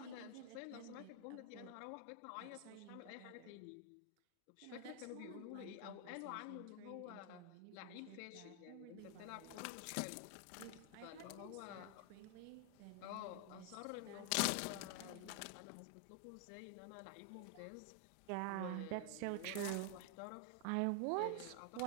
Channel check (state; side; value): different; both; correlation 0.00